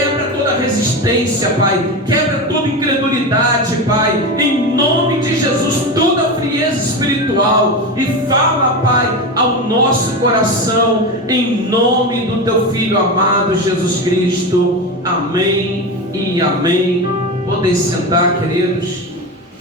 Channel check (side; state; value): both; normal; correlation 0.21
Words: toda resistência, Pai, quebra toda incredulidade, Pai, em nome de Jesus, toda frieza espiritual, e fala, Pai, ao nosso coração, em nome do Teu Filho amado Jesus Cristo. Amém e amém. Podem sentar, queridos.